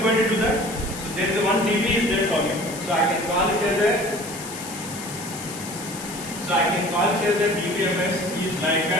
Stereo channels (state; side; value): noise; left; hiss, 11 dB below the sound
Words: going to do that? So there is a one DB is there for me. So I can call it as a. So I can call it as a Dbms is like